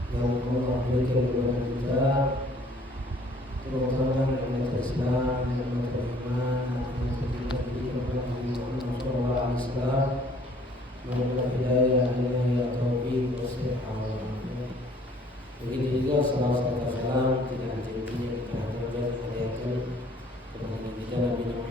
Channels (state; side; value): normal; both; correlation 0.58